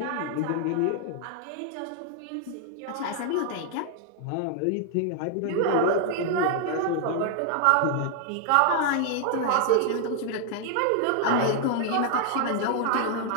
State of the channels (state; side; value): different; both; correlation 0.00